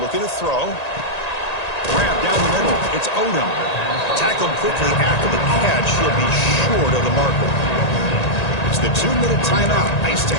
to throw. Grab down the middle. It's Odom. Tackled quickly after the catch. He'll be short of the marker. It's the 2-minute timeout. Nice to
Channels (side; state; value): right; late; 1.9 ms